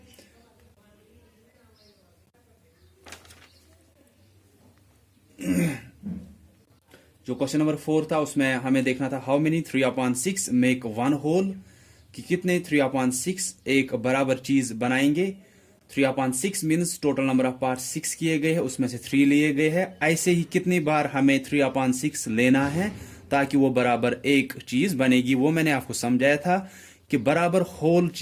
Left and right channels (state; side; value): identical; both; correlation 1.00